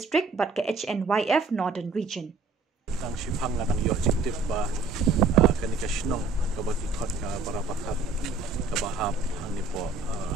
bat ka HNYF Northern Region. Tang shipang na tang yojik ba kanika shnong kabati thot ka barabakat kabahap hani po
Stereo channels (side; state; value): left; quieter; 3.9 dB